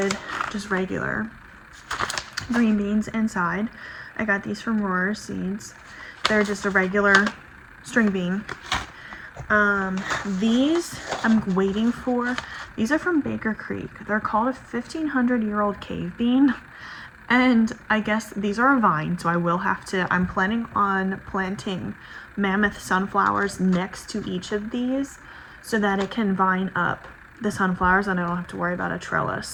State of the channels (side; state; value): both; identical; correlation 1.00